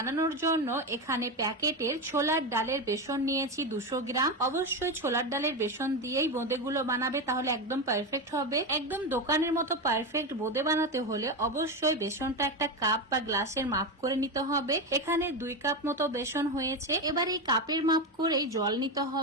জন্য এখানে প্যাকেটের ছোলার ডালের বেসন নিয়েছি 200 গ্রাম। অবশ্যই ছোলার ডালের বেসন দিয়েই বোঁদেগুলো বানাবে, তাহলে একদম পারফেক্ট হবে। একদম দোকানের মতো পারফেক্ট বোঁদে বানাতে হলে অবশ্যই বেসনটা একটা কাপ বা গ্লাসের মাপ করে নিতে হবে। এখানে 2 কাপ মতো বেসন হয়েছে। এবার এই কাপের মাপ করেই জল নিতে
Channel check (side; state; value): both; normal; correlation 0.15